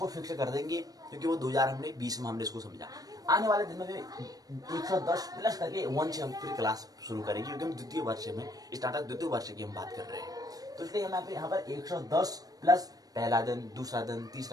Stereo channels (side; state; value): left; late; 0.18 ms